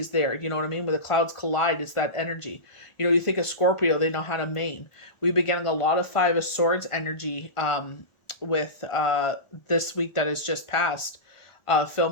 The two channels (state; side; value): late; right; 1.4 ms